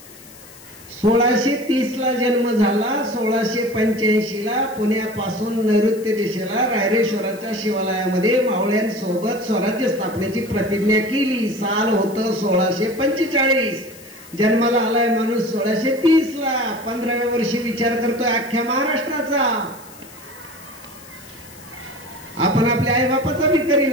1630 ला जन्म झाला, 1685 ला पुण्यापासून नैऋत्य दिशेला रायरेश्वराच्या शिवालयामध्ये मावळ्यांसोबत स्वराज्य स्थापनेची प्रतिज्ञा केली. साल होतं 1645. जन्माला आलाय माणूस 1630 ला. 15व्या वर्षी विचार करतोय अख्ख्या महाराष्ट्राचा. आपण आपल्या आई बापाचा बी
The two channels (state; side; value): noise; left; hiss, 21 dB below the sound